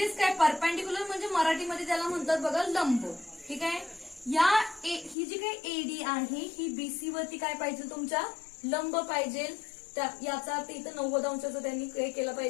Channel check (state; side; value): drops out; right; at 5.2 s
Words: काय, परपेंडिक्युलर म्हणजे मराठीमध्ये त्याला म्हणतात बघा लंब. ठीक आहे, ही जी काही एडी आहे ही बीसी वरती काय पाहिजे, तुमच्या लंब पाहिजे. याचा अर्थ इथं 90 अंशाचा त्यांनी काय केला